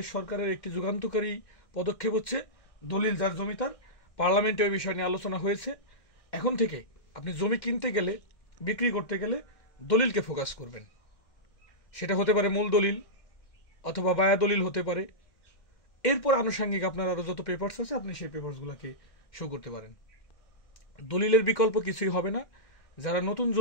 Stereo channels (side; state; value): right; late; 2.1 ms